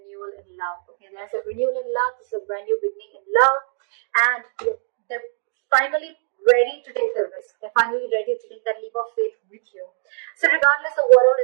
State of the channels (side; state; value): left; silent; 64 dB below the other